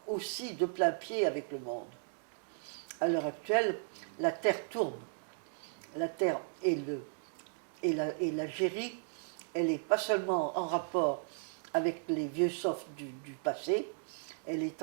aussi de plein pied avec le monde. À l'heure actuelle, la Terre tourne. La Terre et l'Algérie, elle n'est pas seulement en rapport avec les vieux softs du passé, elle est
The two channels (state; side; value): silent; left; digital silence